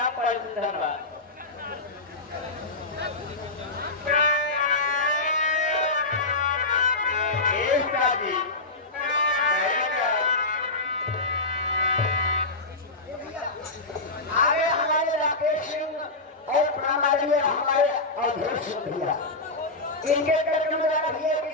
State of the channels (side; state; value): right; quieter; 3.1 dB